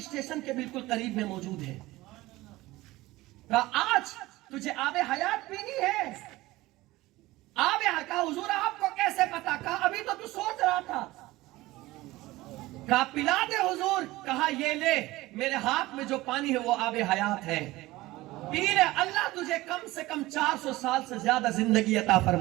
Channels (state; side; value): quieter; left; 18.7 dB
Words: کے بالکل قریب میں موجود ہے. کہا آج تجھے آب حیات پینی ہے؟ آب حیات. کہا حضور آپ کو کیسے پتا؟ کہا ابھی تو سوچ رہا تھا. کہا پلا دے حضور. کہا یہ لے، میرے ہاتھ میں جو پانی ہے وہ آب حیات ہے، پی لے. اللہ تجھے کم سے کم 400 سال سے زیادہ زندگی عطا